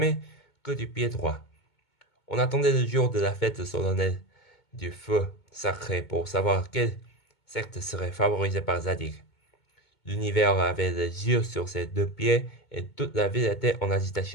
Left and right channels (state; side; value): late; right; 2.2 ms